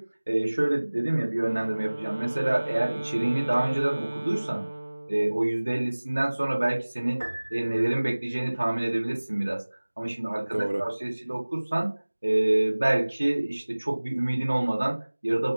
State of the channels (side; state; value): both; inverted; correlation -1.00